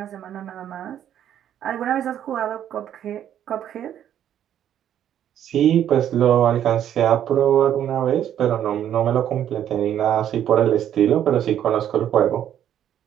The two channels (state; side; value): quieter; left; 10.4 dB